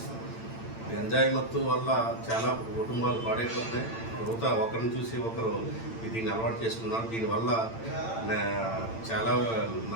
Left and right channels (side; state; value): right; late; 8.9 ms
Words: గంజాయి మత్తు వల్ల చాలా కుటుంబాలు పాడైపోతున్నాయి. ఒకరిని చూసి ఒకరు దీన్ని అలవాటు చేసుకున్నారు. దీనివల్ల చాలా